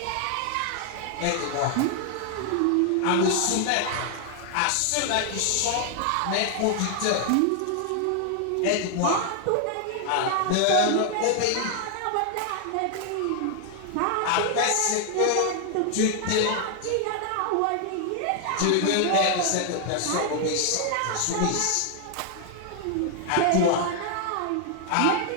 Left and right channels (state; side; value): different; both; correlation 0.00